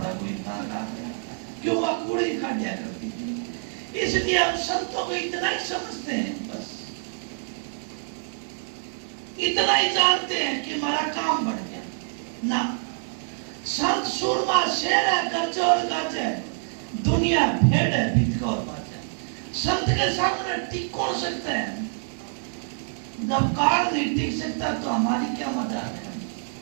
कोई बात, क्यों? वह कूड़े ही काट दिया करती थी। इसलिए हम संतों को इतना ही समझते हैं, बस इतना ही जानते हैं कि हमारा काम बढ़ गया ना। संत सूरमा शेर है, गरजे और गाजे, दुनिया भेड़ है, भितका और बाजा। संत के सामने टिक कौन सकता है? जब काल नहीं टिक सकता तो हमारी क्या मदद है?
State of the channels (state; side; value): silent; left; digital silence